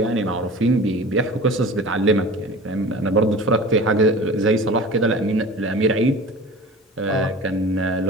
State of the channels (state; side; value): normal; both; correlation 0.38